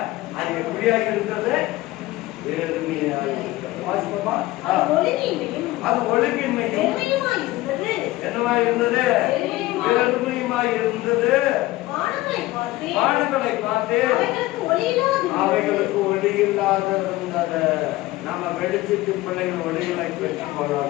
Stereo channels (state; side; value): quieter; right; 18.1 dB